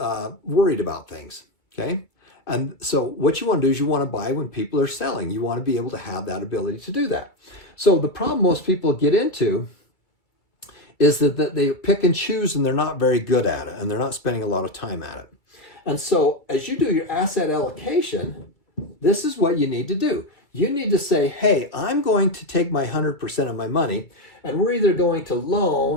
about things, okay? And so what you want to do is you want to buy when people are selling. You want to be able to have that ability to do that. So the problem most people get into is that they pick and choose, and they're not very good at it, and they're not spending a lot of time at it. And so as you do your asset allocation, this is what you need to do. You need to say, hey, I'm going to take my 100% of my money, and we're either going to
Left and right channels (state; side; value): late; right; 2.3 ms